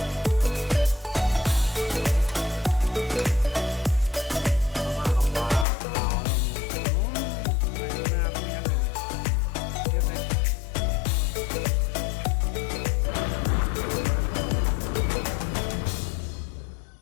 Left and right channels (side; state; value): right; drops out; at 5.7 s